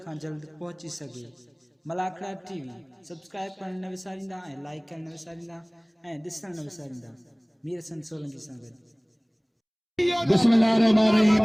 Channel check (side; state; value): both; identical; correlation 1.00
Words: खां जल्द पहुची सघे। मलाखड़ा टीवी सब्सक्राइब करण न विसारींदा ऐं लाइक करण न विसारींदा ऐं ॾिसण न विसारींदा। मीर हसन सोलंकी सां गॾु।